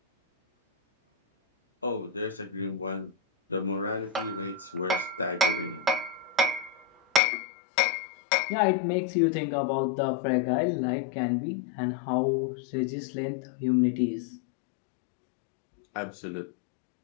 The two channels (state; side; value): drops out; right; at 7.2 s